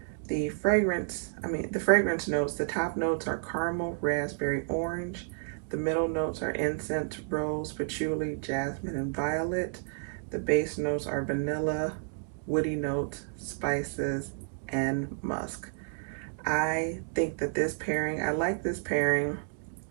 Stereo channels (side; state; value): left; silent; digital silence